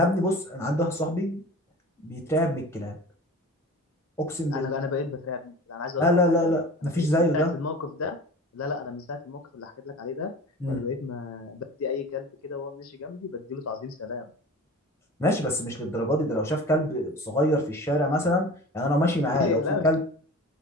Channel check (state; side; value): normal; both; correlation 0.38